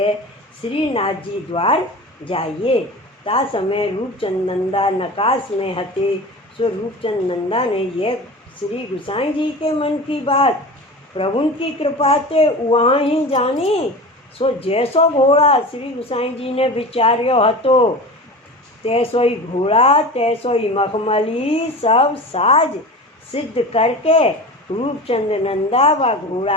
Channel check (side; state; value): both; normal; correlation 0.32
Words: श्रीनाथ जी द्वार जाइए। ता समय रूपचंद नंदा नकाश में हते। सो रूपचंद नंदा ने यह श्री गोसाई जी के मन की बात प्रभु की कृपा से वहाँ ही जानी। सो जैसो घोड़ा श्री गोसाई जी ने विचार्यो हतो, तैसो ही घोड़ा तैसो ही मखमली सब साज सिद्ध करके रूपचंद नंदा व